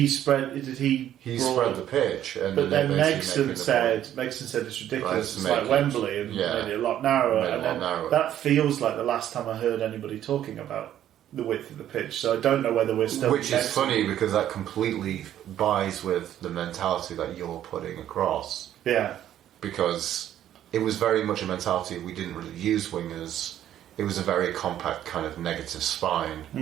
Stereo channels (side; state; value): left; quieter; 11.4 dB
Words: spread the pitch, and but then Megson said it's ridiculous. It's like Wembley, and made it a lot narrower. That feels like the last time I heard anybody talking about the width of the pitch. So I don't know whether we're still. Which is funny, because that completely buys with the mentality that you're putting across. Yeah. Because it was very much a mentality. We didn't really use wingers. It was a very compact kind of negative